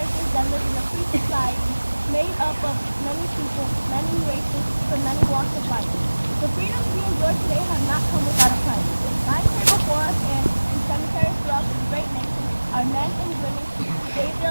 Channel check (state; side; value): inverted; both; correlation -1.00